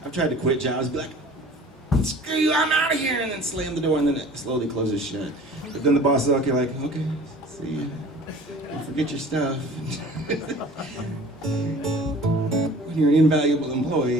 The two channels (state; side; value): normal; both; correlation 0.45